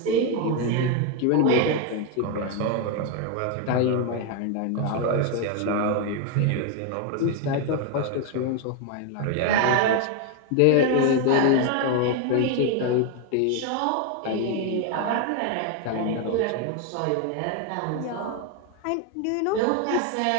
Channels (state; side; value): different; both; correlation 0.01